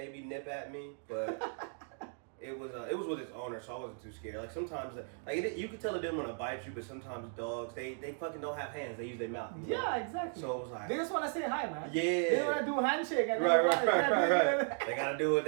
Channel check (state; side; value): silent; left; 54 dB below the other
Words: nip at me, but. It was with its owner, so I wasn't too scared. Like sometimes, you can tell it didn't want to bite you, but sometimes dogs they fucking don't have hands; they use their mouth. Yeah, exactly. So it was like they just want to say hi, man. Yeah. They want to do a handshake. And right. They gotta do it with